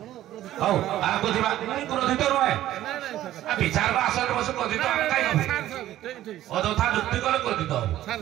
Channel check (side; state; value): left; quieter; 13.6 dB